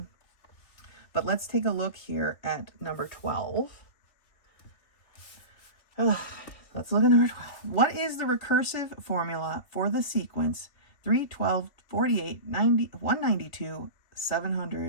But let's take a look here at number 12. Let's look at number 12. What is the recursive formula for the sequence 3, 12, 48, 90, 192,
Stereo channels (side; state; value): right; late; 3.1 ms